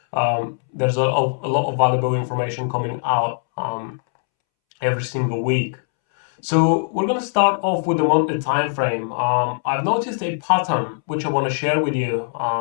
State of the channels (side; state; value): right; silent; 65 dB below the other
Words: There's a lot of valuable information coming out every single week. So we're going to start off with the monthly time frame. I've noticed a pattern which I want to share with you,